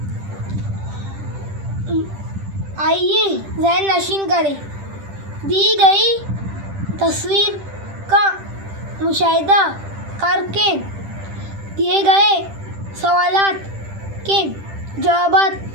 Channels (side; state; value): left; late; 10 ms